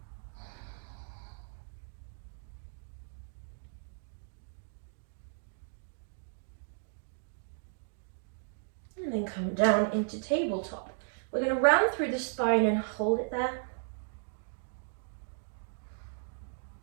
And then come down into tabletop. We're going to round through the spine and hold it there.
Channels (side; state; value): left; silent; digital silence